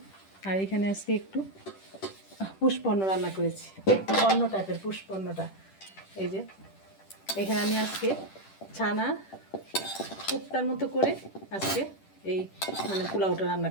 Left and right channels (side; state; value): right; late; 10 ms